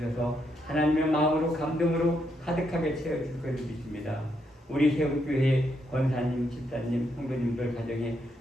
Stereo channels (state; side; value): normal; both; correlation 0.78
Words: 하나님의 마음으로 감동으로 가득하게 채워주실 것을 믿습니다. 우리 세움교회 권사님, 집사님, 성도님들 가정에